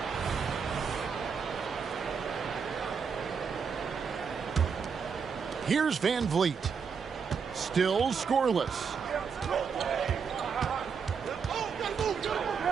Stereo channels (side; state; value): left; quieter; 6.2 dB